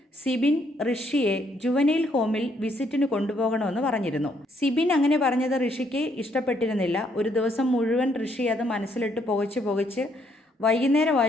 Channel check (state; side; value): normal; both; correlation 0.71